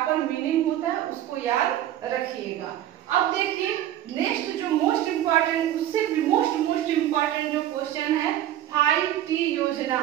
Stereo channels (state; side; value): quieter; left; 12.3 dB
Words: मीनिंग होता है, उसको याद रखिएगा। अब देखिए नेक्स्ट जो मोस्ट इम्पोर्टेंट, उससे भी मोस्ट इम्पोर्टेंट जो क्वेश्चन है, 5T योजना